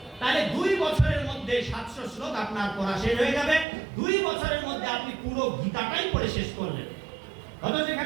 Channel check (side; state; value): left; drops out; at 3.7 s